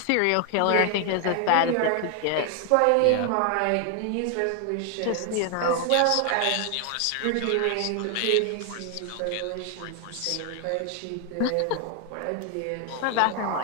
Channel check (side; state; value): both; different; correlation 0.00